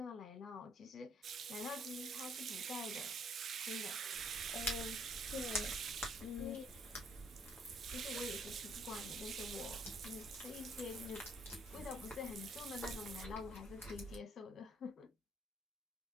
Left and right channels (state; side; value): normal; both; correlation 0.66